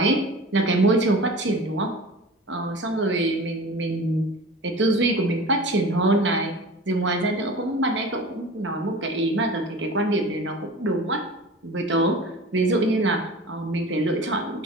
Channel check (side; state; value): both; normal; correlation 0.38